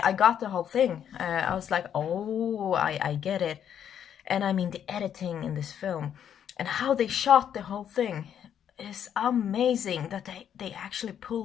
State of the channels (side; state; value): right; quieter; 9.1 dB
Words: got the whole thing, I was like, oh, I get it. And I mean, the editing in this film and how they shot the whole thing is amazing, that they actually